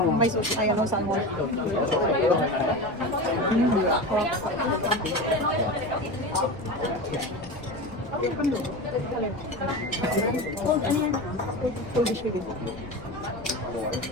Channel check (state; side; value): normal; both; correlation 0.26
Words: May sushi, ay salmon.